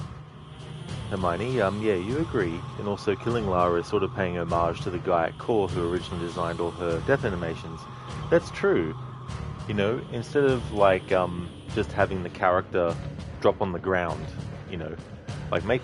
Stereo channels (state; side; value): identical; both; correlation 1.00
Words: Hermione, yeah, you agree. And also killing Lara is sort of paying homage to the guy at Core who originally designed all her death animations. That's true. You know, instead of like just having the character drop on the ground, you know, like